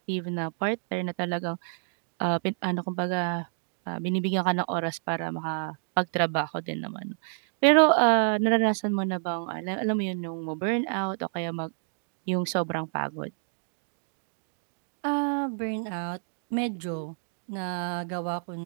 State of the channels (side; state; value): left; silent; digital silence